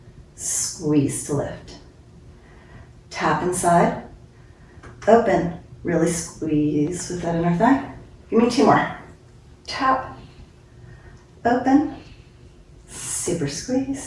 squeeze to lift. Tap inside, open, really squeeze with that inner thigh. Give me 2 more. Tap, open, super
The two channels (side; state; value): both; identical; correlation 1.00